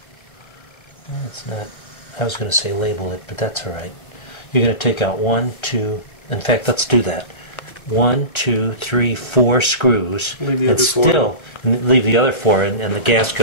it's not, I was going to say label it, but that's all right. You're going to take out 1, 2, in fact, let's do that. 1, 2, 3, 4 screws, Leave the and other four. still leave the other 4, and the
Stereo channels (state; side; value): late; right; 1.3 ms